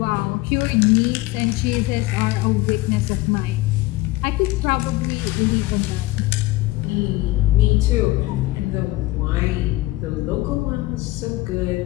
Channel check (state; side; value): quieter; right; 18.8 dB